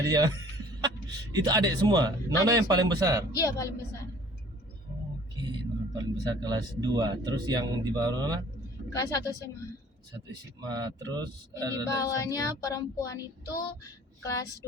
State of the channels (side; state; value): both; normal; correlation 0.52